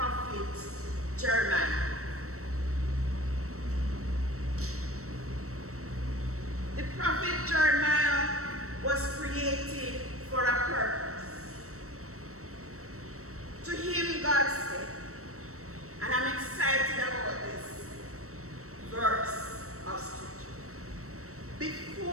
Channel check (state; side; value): late; left; 0.64 ms